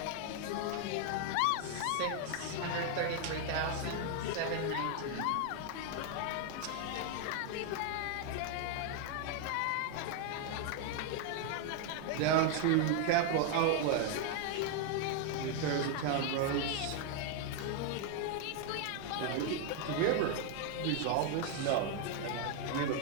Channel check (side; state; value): both; different; correlation 0.00